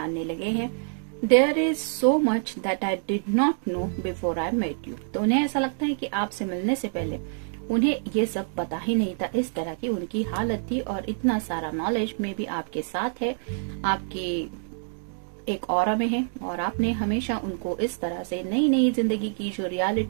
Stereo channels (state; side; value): silent; left; digital silence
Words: लगे हैं। There is so much that I did not know before I met you. तो उन्हें ऐसा लगता है कि आपसे मिलने से पहले उन्हें ये सब पता ही नहीं था, इस तरह की उनकी हालत थी, और इतना सारा नॉलेज में भी आपके साथ है, आपके एक ऑरा में है, और आपने हमेशा उनको इस तरह से नई नई जिंदगी की जो